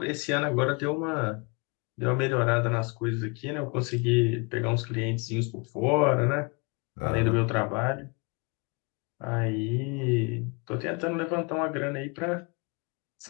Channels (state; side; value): quieter; right; 31.5 dB